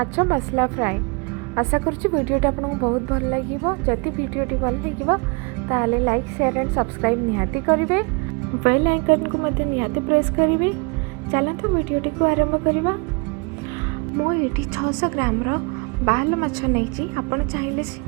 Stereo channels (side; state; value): left; quieter; 31.5 dB